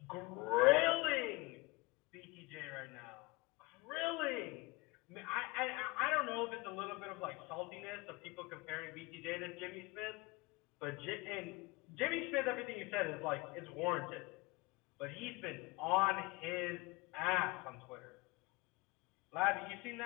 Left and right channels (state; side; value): quieter; right; 24.9 dB